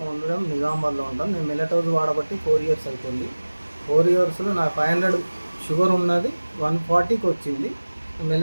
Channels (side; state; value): both; inverted; correlation -1.00